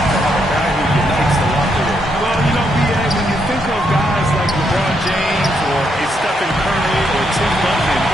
to have a guy who unites the locker room? Well, you know, B.A., when you think of guys like LeBron James or a Stephen Curry or Tim Duncan,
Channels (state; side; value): normal; both; correlation 0.77